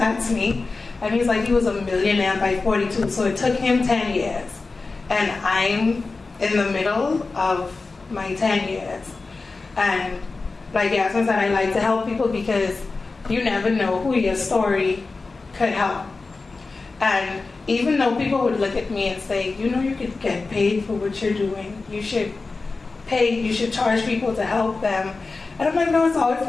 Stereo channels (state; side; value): quieter; right; 3.9 dB